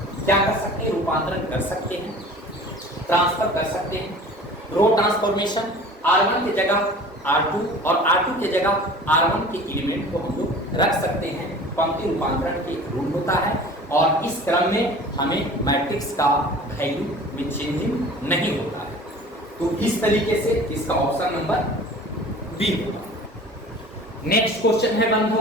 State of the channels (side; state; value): both; normal; correlation 0.43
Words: क्या कर सकते हैं, रूपांतरण कर सकते हैं, ट्रांसफर कर सकते हैं। रो ट्रांसफॉर्मेशन, R1 की जगह R2 और R2 की जगह R1 के एलिमेंट को हम लोग रख सकते हैं। पंक्ति रूपांतरण के रूल होता है और इस क्रम में हमें मैट्रिक्स का वैल्यू में चेंजिंग नहीं होता है। तो इस तरीके से इसका ऑप्शन नंबर बी होगा। नेक्स्ट क्वेश्चन है